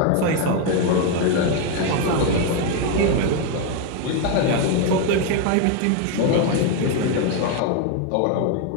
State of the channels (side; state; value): both; different; correlation 0.02